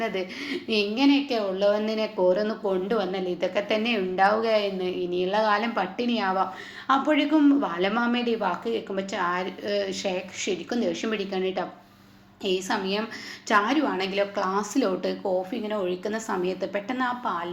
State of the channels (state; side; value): identical; both; correlation 1.00